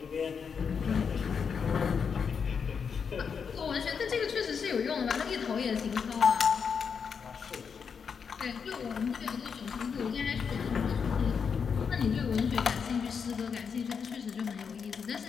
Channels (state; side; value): quieter; right; 6.3 dB